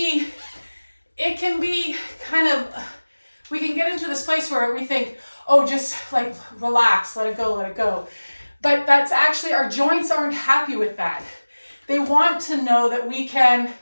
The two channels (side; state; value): both; inverted; correlation -1.00